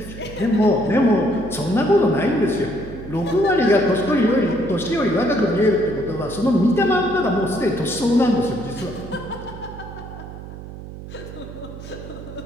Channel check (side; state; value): right; noise; hum, 13 dB below the sound